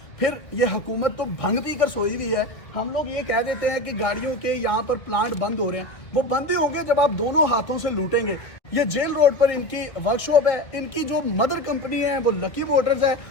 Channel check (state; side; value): late; right; 2.0 ms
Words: फिर ये हुकूमत तो भंग पी कर सोई हुई है। हम लोग ये कह देते हैं कि गाड़ियों के यहाँ पर प्लांट बंद हो रहे हैं, वो बंद ही होंगे जब आप दोनों हाथों से लूटेंगे। ये जेल रोड पर इनकी वर्कशॉप है। इनकी जो मदर कंपनी है वो लकी मोटर्स है,